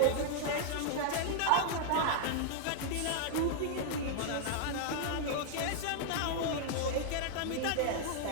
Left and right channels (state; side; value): different; both; correlation -0.01